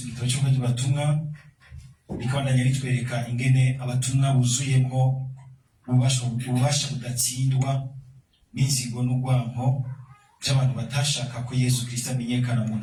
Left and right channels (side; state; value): both; identical; correlation 1.00